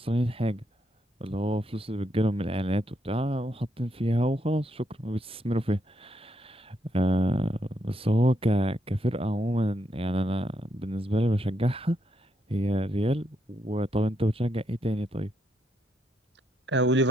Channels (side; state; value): both; normal; correlation 0.79